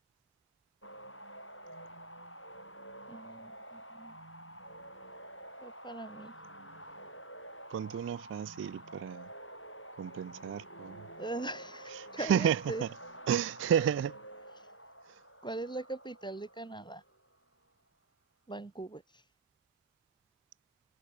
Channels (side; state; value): left; quieter; 6.8 dB